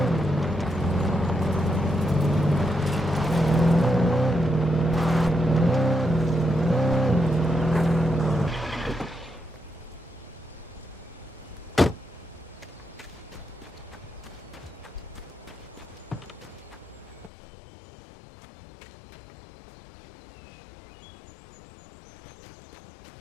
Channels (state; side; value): drops out; right; at 17.3 s